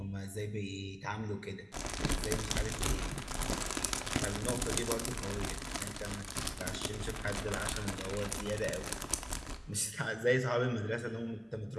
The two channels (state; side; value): identical; both; correlation 1.00